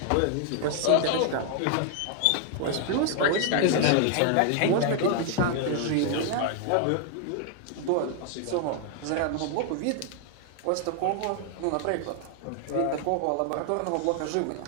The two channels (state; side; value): different; both; correlation 0.00